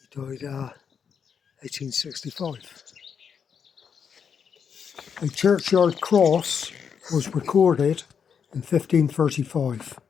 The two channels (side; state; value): right; quieter; 7.0 dB